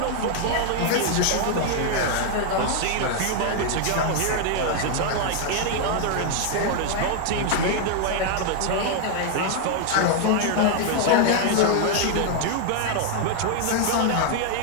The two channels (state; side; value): different; both; correlation 0.00